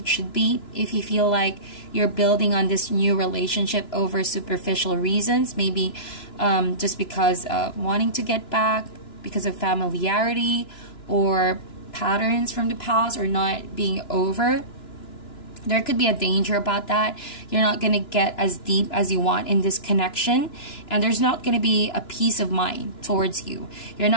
should be, if you feel like you're building on this new relationship over superficial reasons, maybe just because of wanting to get back, because of familiarity, or patterns from the past, or not being over, there could be a danger about that. You're not going to get as deep as you want in this connection, and there's not going to be a peace of mind towards you. You're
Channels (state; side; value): late; right; 2.9 ms